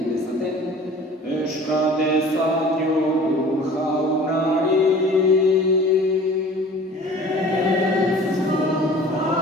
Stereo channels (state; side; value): normal; both; correlation 0.45